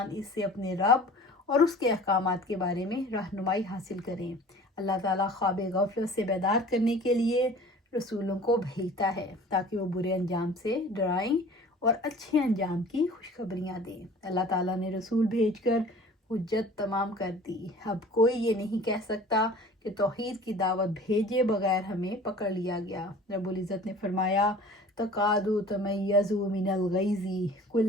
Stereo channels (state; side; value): normal; both; correlation 0.45